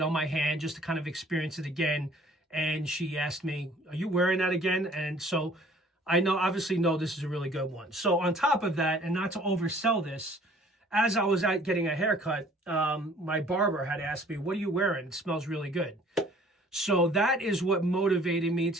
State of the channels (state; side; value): normal; both; correlation 0.54